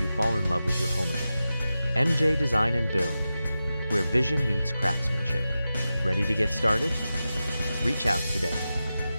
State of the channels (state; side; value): inverted; both; correlation -0.93